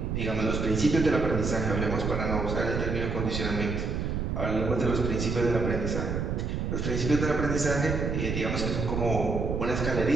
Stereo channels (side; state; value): right; noise; rumble, 1 dB below the sound